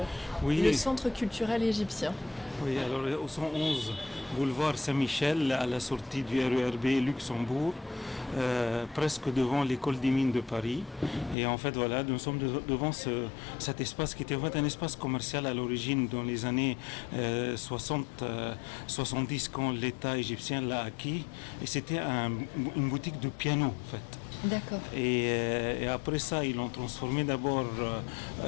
le Oui, centre culturel égyptien. oui, alors au 111 boulevard Saint-Michel, à la sortie du RERB Luxembourg, presque devant l'école des mines de Paris. Et en fait, voilà, nous sommes devant cet espace qui était en fait un espace commercial à l'origine dans les années 60, 70 quand l'État égyptien l'a acquis. Et c'était une boutique de piano en fait. D'accord. Et après ça, ils l'ont transformé d'abord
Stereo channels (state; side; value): drops out; right; at 11.4 s